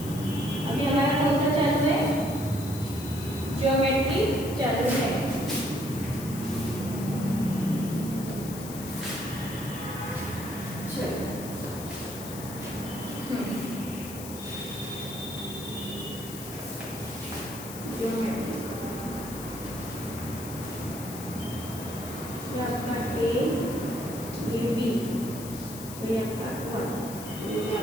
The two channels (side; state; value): left; noise; hiss, 11 dB below the sound